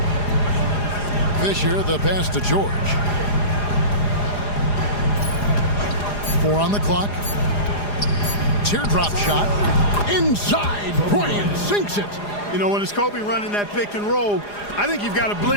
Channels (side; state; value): right; late; 4.9 ms